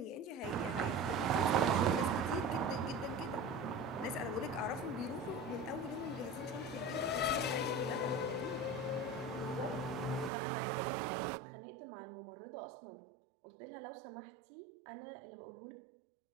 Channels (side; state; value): left; drops out; at 10.3 s